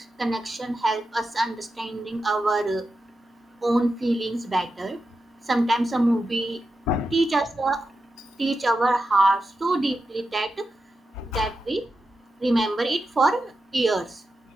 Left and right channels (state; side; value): normal; both; correlation 0.89